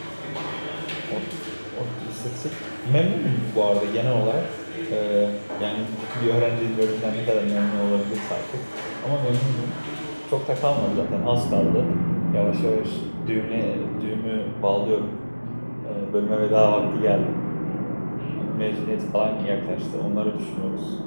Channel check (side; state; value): both; inverted; correlation -1.00